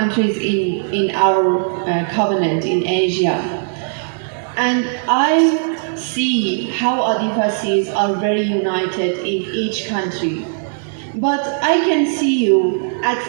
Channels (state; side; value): silent; left; digital silence